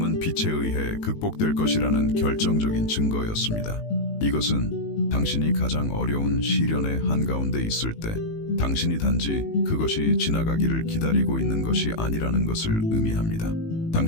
빛에 의해 극복될 것이라는 결정적인 증거였습니다. 이것은 당신이 가장 어려운 시련의 한가운데 있을 때 당신이 단지 그것이 지나가기를 기다리고 있는 것이 아니라는 것을 의미합니다.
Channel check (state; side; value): late; right; 18 ms